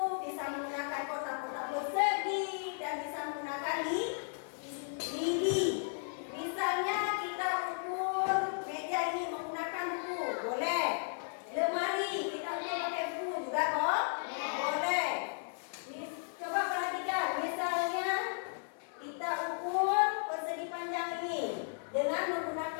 bisa menggunakan kotak-kotak persegi, dan bisa menggunakan lidi. Misalnya kita ukur meja ini menggunakan buku, boleh. Lemari kita ukur pakai buku juga kok, boleh. Coba perhatikan, misalnya kita ukur persegi panjang ini dengan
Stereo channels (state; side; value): silent; right; digital silence